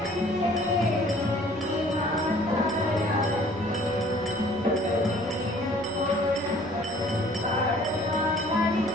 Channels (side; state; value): both; normal; correlation 0.54